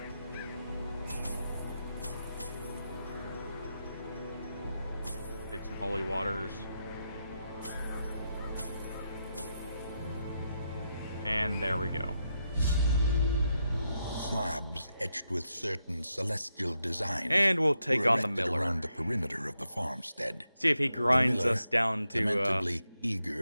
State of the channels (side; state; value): both; inverted; correlation -0.84